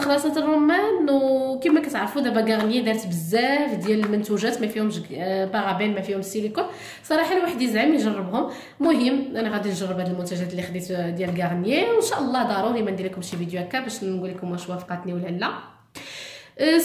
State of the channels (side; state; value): both; identical; correlation 1.00